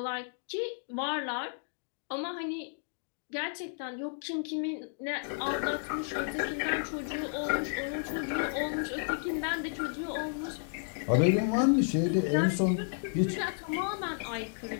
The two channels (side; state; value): right; silent; digital silence